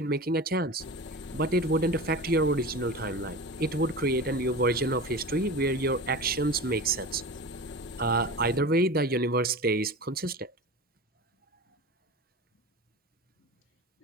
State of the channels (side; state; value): both; normal; correlation 0.31